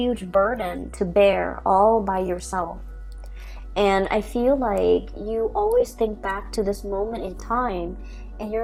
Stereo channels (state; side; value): identical; both; correlation 1.00